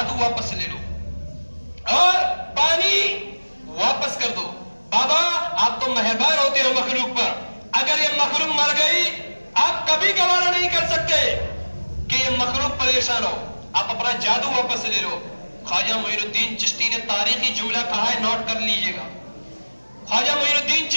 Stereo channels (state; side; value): inverted; both; correlation -1.00